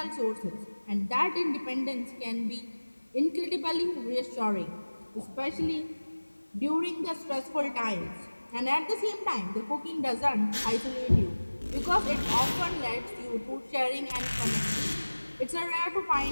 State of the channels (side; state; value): both; inverted; correlation -1.00